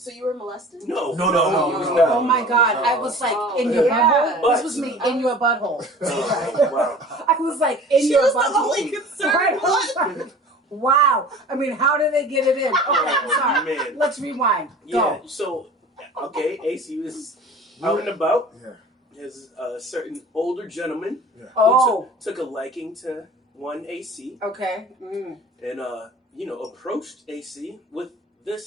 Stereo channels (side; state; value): both; normal; correlation 0.42